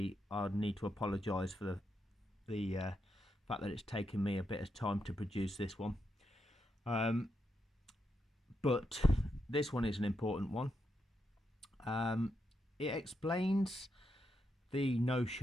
I need to apologise for the fact that it's taken me a bit of time to produce this one. But this one is an important one. It explains the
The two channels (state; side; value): normal; both; correlation 0.83